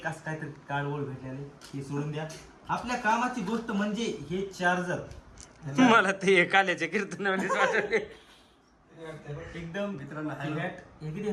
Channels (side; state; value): both; identical; correlation 1.00